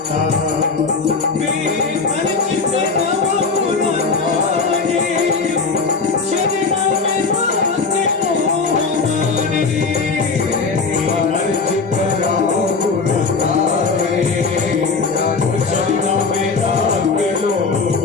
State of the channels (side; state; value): right; quieter; 4.5 dB